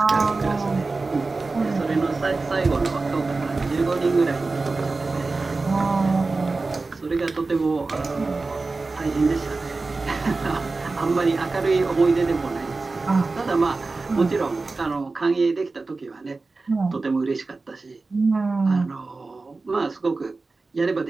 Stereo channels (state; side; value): quieter; left; 3.7 dB